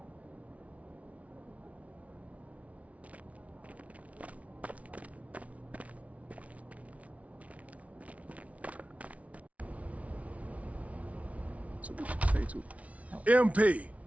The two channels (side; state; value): left; late; 0.066 ms